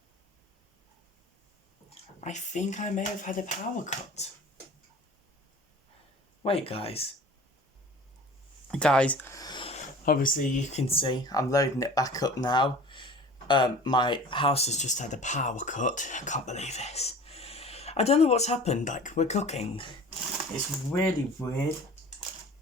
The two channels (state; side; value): normal; both; correlation 0.42